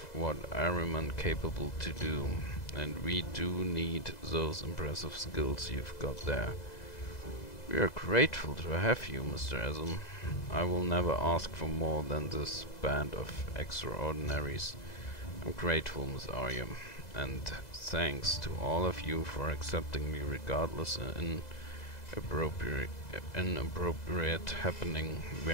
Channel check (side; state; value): right; late; 2.0 ms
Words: what I'm capable to do, and we do need those impressive skills you've got there. We are grateful to have you, Mr. Asm. I will never ask for more than this band of extraordinaries. I'm grateful, Miss Arya, and thanks to all of you for accepting me regardless inappropriate happening we